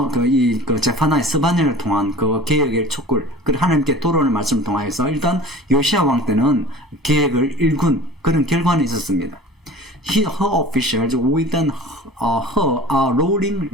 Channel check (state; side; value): normal; both; correlation 0.41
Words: 제파나의 스바냐를 통한 그 계획의 촉구를 하나님께 돌아오는 말씀을 통하여서 일단 요시아 왕 때는 계획을 일군 그런 결과는 있었습니다. her officials with her a rolling